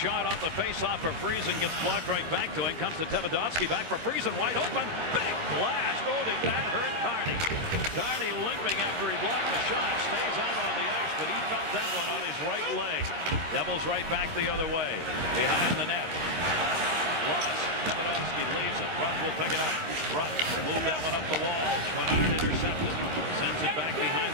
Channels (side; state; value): left; late; 13 ms